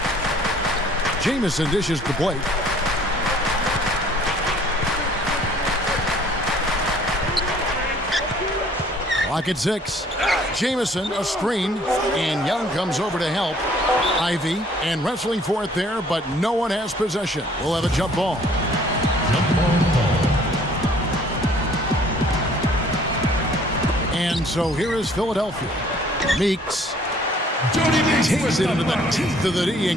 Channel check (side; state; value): both; normal; correlation 0.57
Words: Jamison dishes to Blake. Clock at 6. Jamison, a screen, and Young comes over to help. Ivy, and wrestling for it there, but no one has possession. We'll have a jump ball. And so here is Philadelphia. Meeks takes it into the teeth of the D